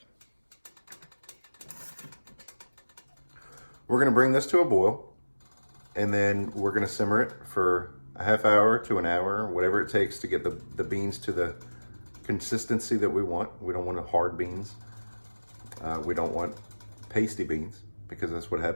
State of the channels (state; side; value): inverted; both; correlation -1.00